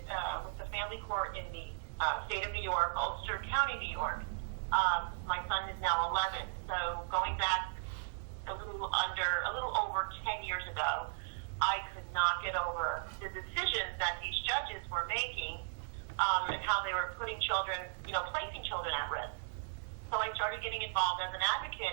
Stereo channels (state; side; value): silent; left; digital silence